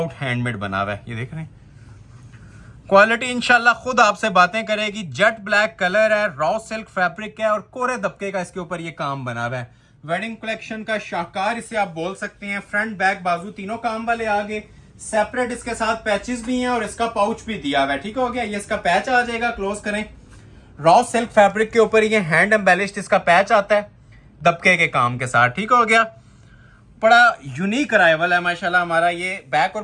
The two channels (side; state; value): both; identical; correlation 1.00